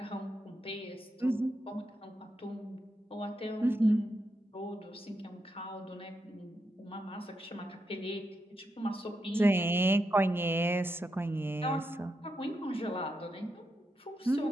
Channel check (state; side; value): normal; both; correlation 0.84